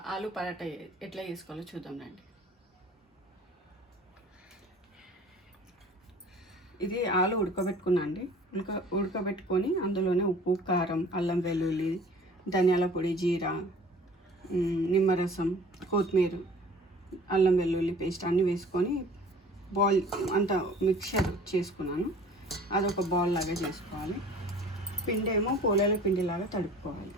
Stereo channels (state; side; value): normal; both; correlation 0.48